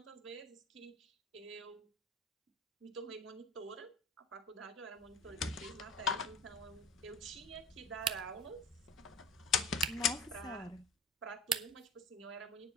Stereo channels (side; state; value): both; normal; correlation 0.36